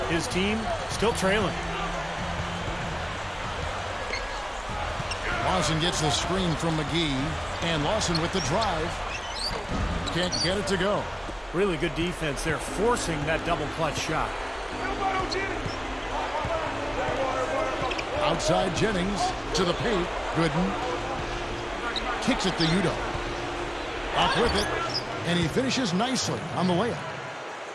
his team still trailing. Lawson gets the screen from McGee. And Lawson with the drive. Can't get it to go. Really good defense there, forcing that double clutch shot. Outside Jennings to the paint. Gooden kicks it to Udo. Up with it. And he finishes nicely on the layup.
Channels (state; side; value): identical; both; correlation 1.00